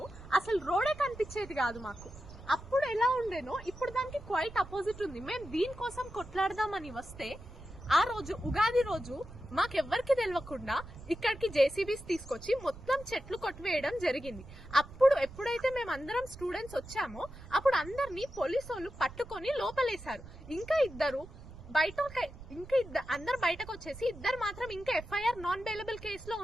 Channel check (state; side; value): noise; right; rumble, 16 dB below the sound